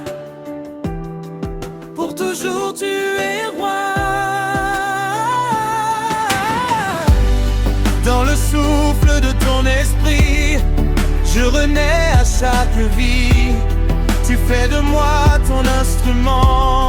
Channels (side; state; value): both; identical; correlation 1.00